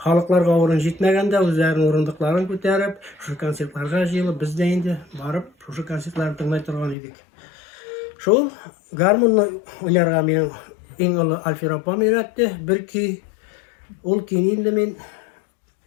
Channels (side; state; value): right; drops out; at 7.0 s